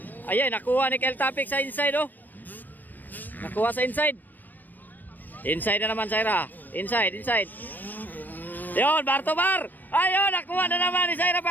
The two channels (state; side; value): late; right; 0.089 ms